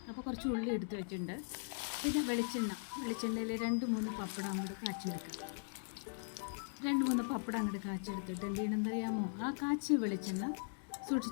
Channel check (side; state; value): right; silent; digital silence